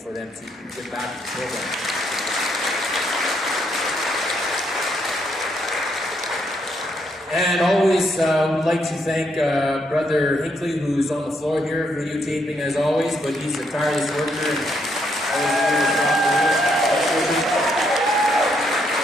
them to give back to the program. And always would like to thank Brother Hinckley, who's on the floor here, videotaping as always, but he's a tireless worker.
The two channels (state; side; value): normal; both; correlation 0.75